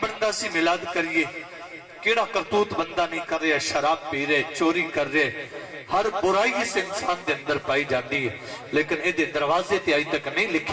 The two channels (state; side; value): identical; both; correlation 1.00